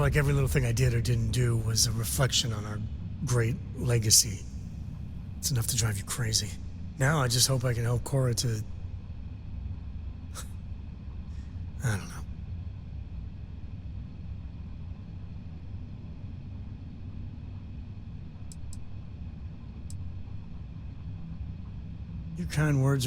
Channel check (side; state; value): both; identical; correlation 1.00